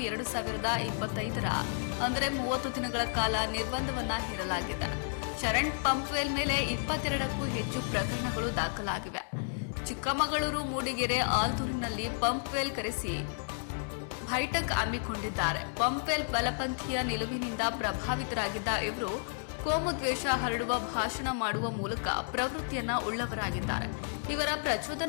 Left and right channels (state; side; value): silent; right; digital silence